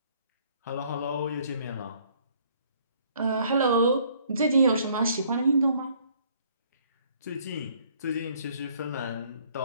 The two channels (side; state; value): both; inverted; correlation -0.62